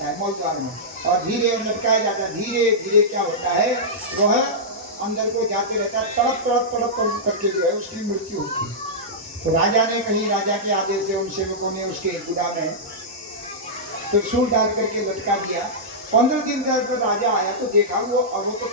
है, मौल द्वार में, और धीरे लटकाया जाता है। धीरे धीरे क्या होता है, वह अंदर को जाते रहता है, तड़प तड़प तड़प तड़प करके जो है उसकी मृत्यु होती है। तो राजा ने कहीं राजा के आदेश से उन सेवकों ने उसके गुदा में त्रिशूल डाल करके लटका दिया। 15 दिन तक राजा आया तो देखा वो तो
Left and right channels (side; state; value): both; normal; correlation -0.11